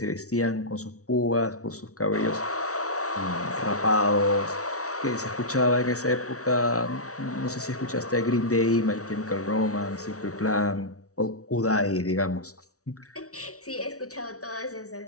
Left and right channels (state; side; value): late; right; 0.65 ms